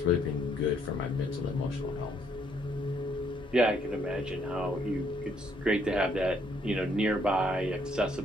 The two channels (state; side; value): normal; both; correlation 0.69